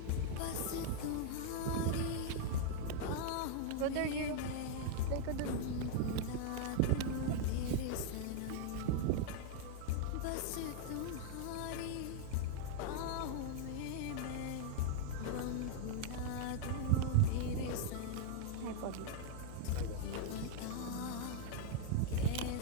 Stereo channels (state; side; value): different; both; correlation -0.01